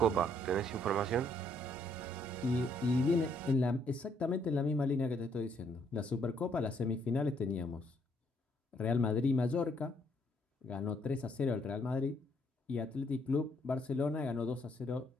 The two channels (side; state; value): both; normal; correlation 0.69